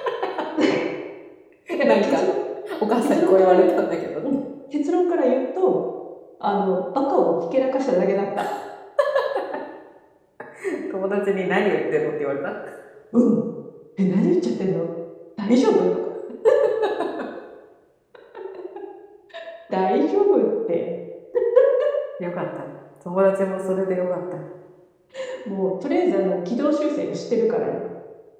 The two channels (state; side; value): identical; both; correlation 1.00